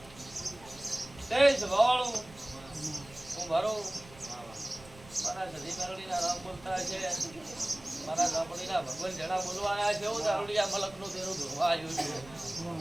વાળું હું મારો મારા સધી મેરડી ના રામ બોલતા છે મારા ગામડી ના ભગવાન જણા બોલવા આવ્યા છે એવું દારૂડિયા મલક નું તેનું ધોવા આવ્યું છે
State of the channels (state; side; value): noise; right; rumble, 20 dB below the sound